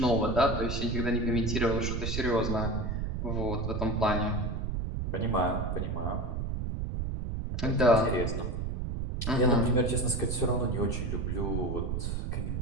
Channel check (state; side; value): noise; right; rumble, 2 dB below the sound